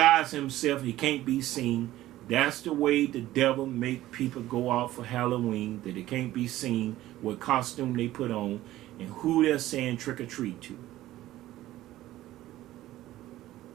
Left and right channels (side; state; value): left; quieter; 15.1 dB